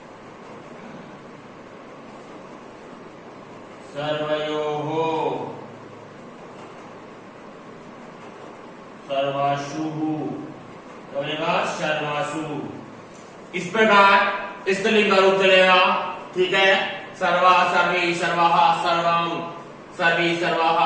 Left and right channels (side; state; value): both; identical; correlation 1.00